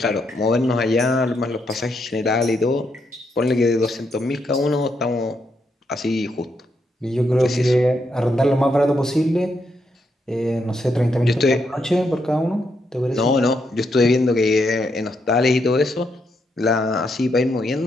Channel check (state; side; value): normal; both; correlation 0.79